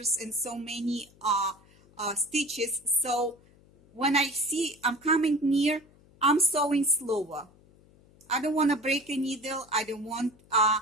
and so many stitches, so when I see I'm coming near, I'm sewing slower. I don't want to break a needle. I don't want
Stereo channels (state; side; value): noise; left; hum, 28 dB below the sound